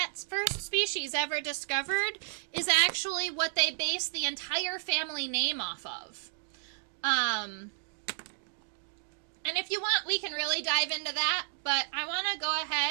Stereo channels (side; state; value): left; silent; digital silence